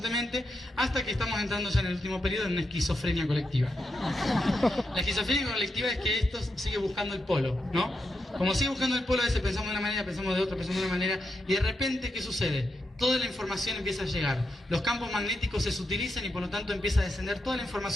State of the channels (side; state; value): both; normal; correlation 0.85